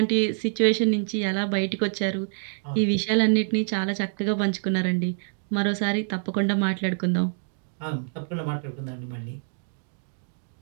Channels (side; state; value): left; silent; digital silence